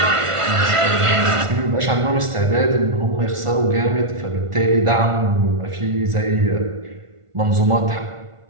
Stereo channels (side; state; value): left; late; 1.5 ms